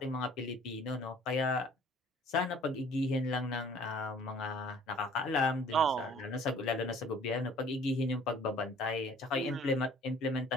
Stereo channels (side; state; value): both; normal; correlation 0.53